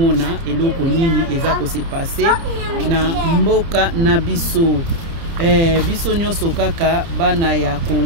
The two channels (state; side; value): late; left; 30 ms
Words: eloko nini eza ko se passer na mboka na biso biso nyonso kaka bana ya